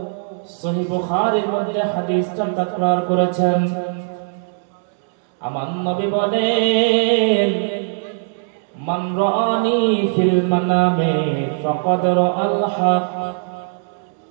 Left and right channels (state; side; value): silent; left; 66 dB below the other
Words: সহিহ বুখারীর মধ্যে হাদিসটা তাকরার করেছেন। আমার নবী বলেন, মান রাআনি ফিল মানামে ফাকাদ রাআল হক।